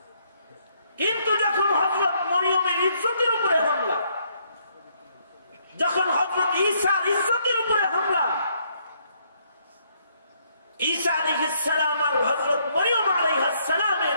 কিন্তু যখন হযরত মরিয়মের ইজ্জতের উপরে হামলা, যখন হযরত ঈসার ইজ্জতের উপরে হামলা, ঈসা আলাইহিস সালাম আর হযরত মরিয়ম আলাইহিস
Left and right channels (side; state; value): both; inverted; correlation -0.70